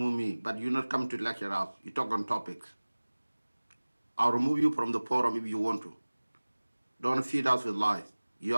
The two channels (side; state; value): both; inverted; correlation -1.00